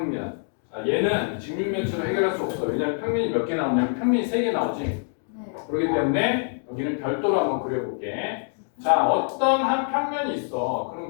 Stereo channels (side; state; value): right; silent; 60 dB below the other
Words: 자, 얘는 직육면체로 해결할 수 없어. 왜냐하면 평면이 몇 개 나오냐면 평면이 3개 나오지. 네. 그렇기 때문에 여기는 별도로 한번 그려볼게. 자, 어떤 한 평면이 있어.